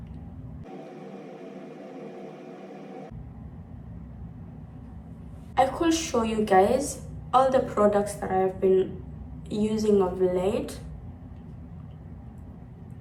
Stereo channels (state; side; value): identical; both; correlation 1.00